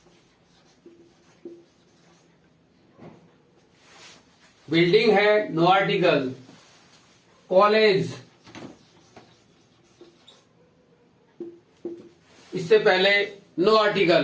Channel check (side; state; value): both; identical; correlation 1.00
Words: बिल्डिंग है, नो आर्टिकल। कॉलेज, इससे पहले नो